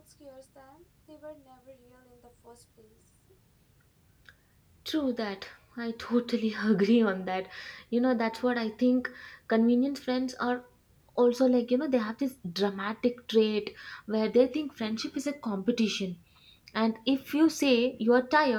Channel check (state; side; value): identical; both; correlation 1.00